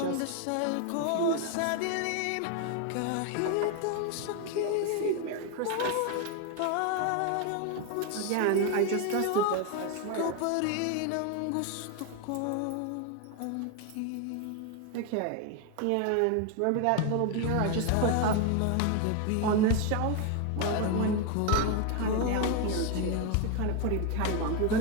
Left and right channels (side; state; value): both; different; correlation 0.01